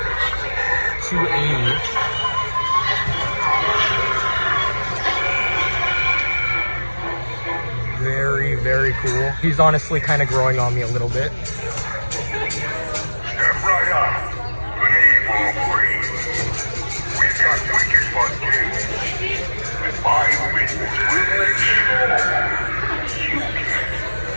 $280. Very, very cool. He's honestly kind of growing on me a little bit. Step right up. Leave or breathe. We've got wicked fun games. And my witness will make sure you get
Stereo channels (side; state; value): both; inverted; correlation -1.00